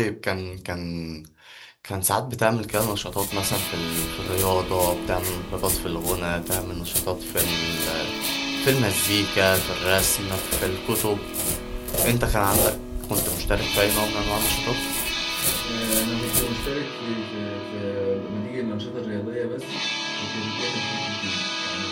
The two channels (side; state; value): both; identical; correlation 1.00